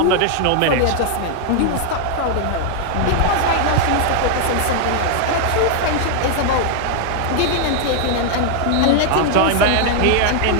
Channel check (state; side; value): different; both; correlation 0.00